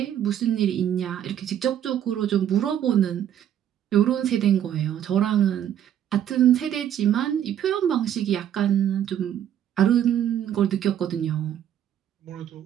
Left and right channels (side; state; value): left; quieter; 10.3 dB